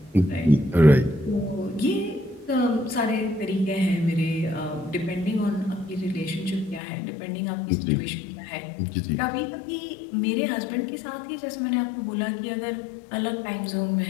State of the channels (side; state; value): right; drops out; at 6.8 s